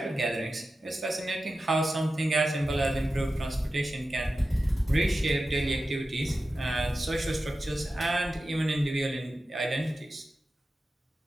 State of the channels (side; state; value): both; normal; correlation 0.92